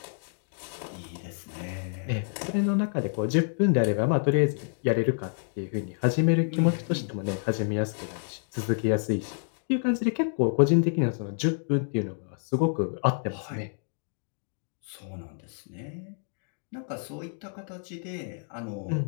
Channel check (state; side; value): silent; right; 59 dB below the other